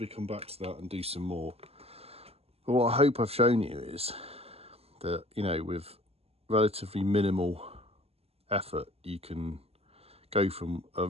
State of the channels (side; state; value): left; late; 0.29 ms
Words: come back to that and do some more. But what I hope I've shown you is that, you know, with relatively minimal effort, you can go from